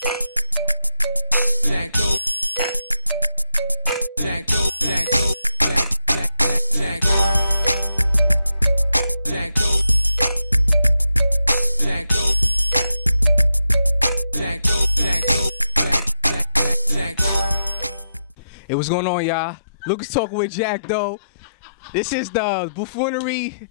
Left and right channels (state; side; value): inverted; both; correlation -0.84